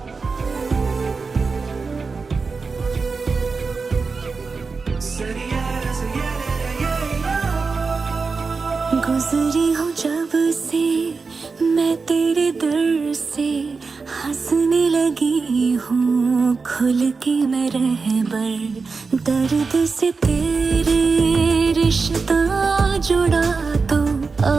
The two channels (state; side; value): quieter; left; 4.5 dB